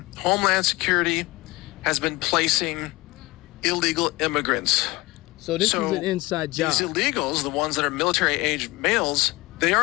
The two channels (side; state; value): right; quieter; 21.4 dB